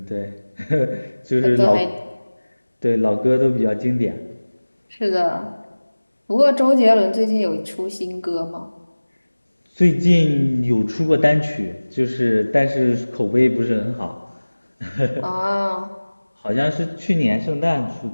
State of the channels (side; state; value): both; inverted; correlation -1.00